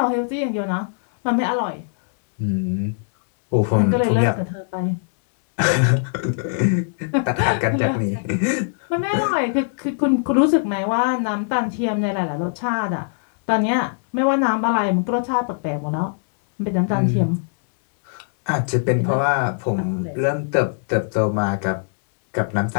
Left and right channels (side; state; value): right; silent; 65 dB below the other